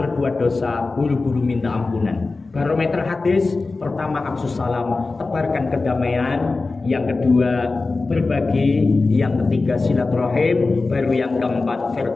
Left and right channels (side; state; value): right; quieter; 3.7 dB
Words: dosa buru-buru minta ampunan. Barometer hadis, pertama afsus salam, tebarkan kedamaian. Yang kedua, berbagi. Yang ketiga, silaturahim. Baru yang keempat,